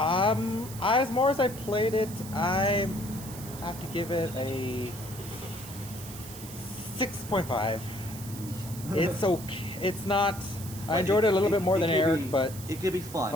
more as I played it, I have to give it a 6.5. It's okay. It's not. I enjoyed it a little bit more than Eric, but it could be fun.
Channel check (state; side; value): noise; right; hiss, 14 dB below the sound